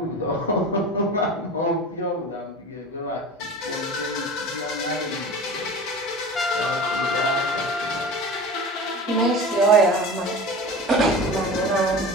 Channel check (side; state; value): both; normal; correlation 0.34